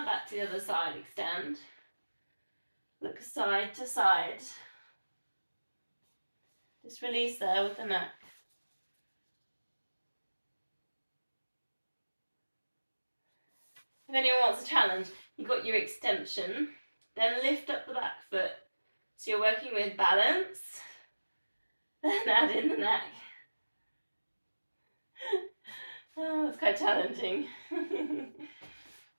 back to the other side, extend. Look side to side. Just release there with the neck. If anyone wants a challenge, you've got your extension, then lift up the back foot. So you're working with balance, then add in the neck. Oh, it's quite challenging.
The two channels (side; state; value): both; inverted; correlation -1.00